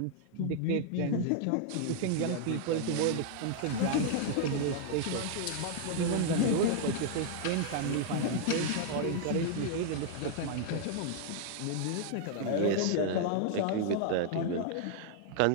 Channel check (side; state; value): both; different; correlation -0.01